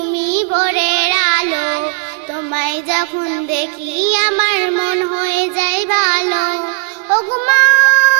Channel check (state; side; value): quieter; left; 38.2 dB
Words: ভোরের আলো, তোমায় যখন দেখি আমার মন হয়ে যায় ভালো। ওগো মা